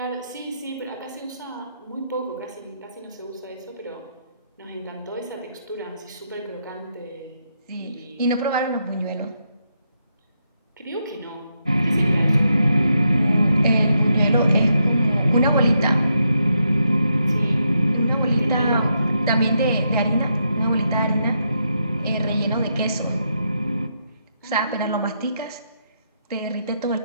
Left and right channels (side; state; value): both; inverted; correlation -0.81